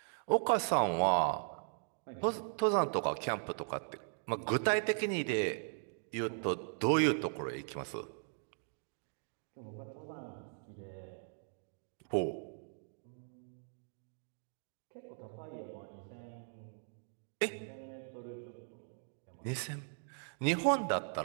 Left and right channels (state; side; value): silent; left; digital silence